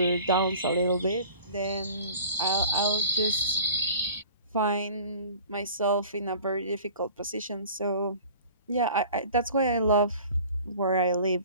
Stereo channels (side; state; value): both; inverted; correlation -0.44